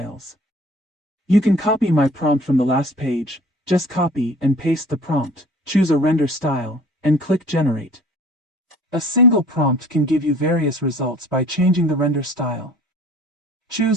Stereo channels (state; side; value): normal; both; correlation 0.50